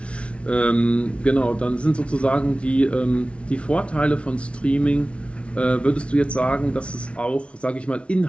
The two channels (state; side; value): late; right; 0.060 ms